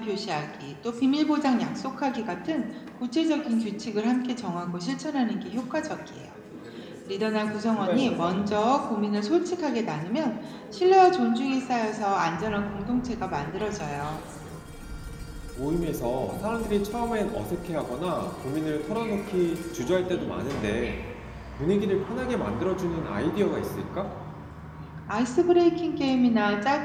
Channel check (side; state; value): both; identical; correlation 1.00